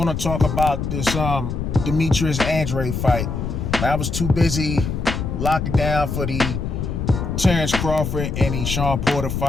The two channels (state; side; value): noise; left; rumble, 3 dB below the sound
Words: talk about this Demetrius Andrade fight. I was too busy locking down for the Terrence Crawford and the Sean Porter